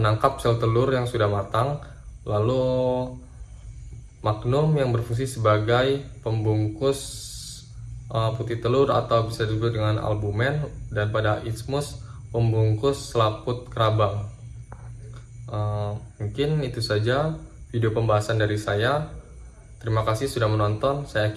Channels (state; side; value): identical; both; correlation 1.00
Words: sel telur yang sudah matang, lalu magnum yang berfungsi sebagai pembungkus putih telur atau bisa disebut dengan albumen, dan pada isthmus pembungkus selaput kerabang. Mungkin itu saja video pembahasan dari saya. Terima kasih sudah menonton. Saya